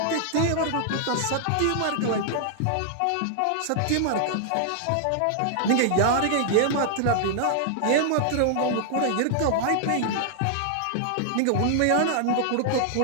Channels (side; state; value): both; different; correlation -0.01